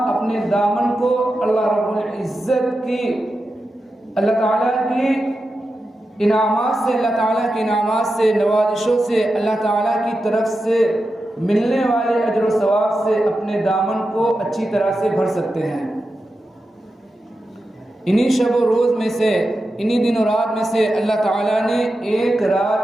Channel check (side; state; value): both; normal; correlation 0.90